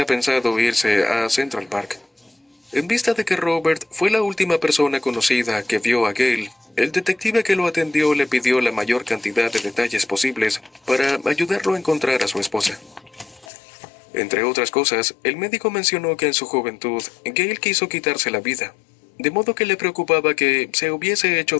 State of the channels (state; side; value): drops out; right; at 13.5 s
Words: pensado irse a Central Park. En vista de que Robert fue la última persona conocida que vio a Gail, el detective que lo atendió le pidió la mayor cantidad de detalles posibles para ayudarlo a encontrar a su esposa. Entre otras cosas, el médico mencionó que en su juventud, Gail quiso quitarse la vida, de modo que le preocupaba que se hubiese hecho